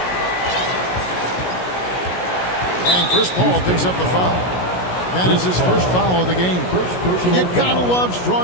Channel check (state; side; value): late; right; 17 ms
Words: And Chris Paul picks up the foul. That is his first foul of the game. You gotta love